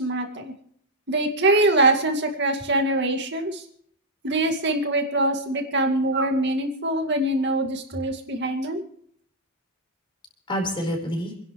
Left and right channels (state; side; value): normal; both; correlation -0.04